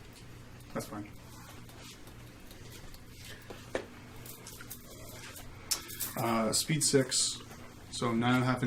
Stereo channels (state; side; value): identical; both; correlation 1.00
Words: That's fine. Speed 6, so 9.5